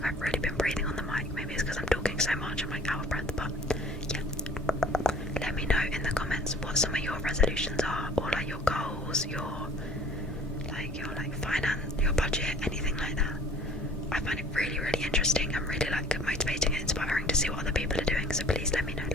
like I've really been breathing on the mic. Maybe it's because I'm talking so much, I'm like out of breath, but yeah. Let me know in the comments what some of your resolutions are, or like your goals, your finance, your budget, anything like that. I find it really, really interesting and really like motivating and inspiring to see what other people are doing. So please let me know.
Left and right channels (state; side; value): normal; both; correlation 0.51